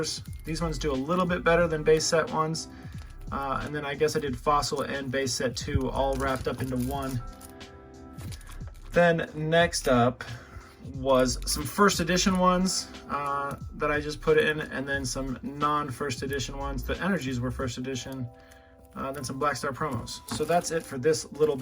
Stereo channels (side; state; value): both; identical; correlation 1.00